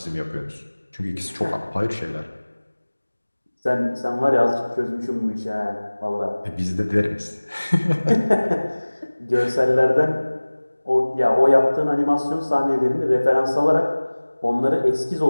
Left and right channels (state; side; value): inverted; both; correlation -1.00